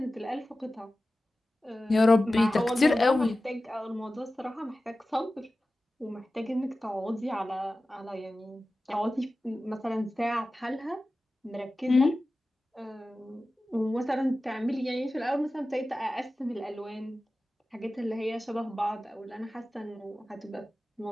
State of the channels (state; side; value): normal; both; correlation 0.95